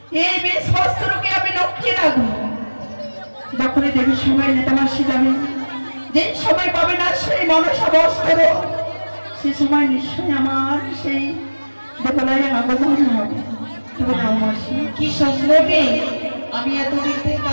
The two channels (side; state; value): both; inverted; correlation -1.00